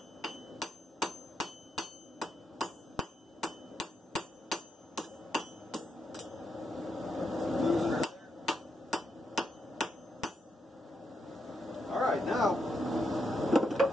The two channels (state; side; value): normal; both; correlation 0.82